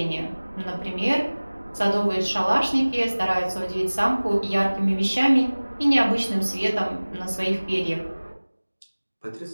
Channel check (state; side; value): inverted; both; correlation -1.00